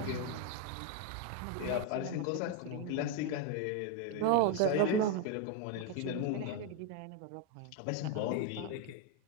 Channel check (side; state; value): both; different; correlation 0.01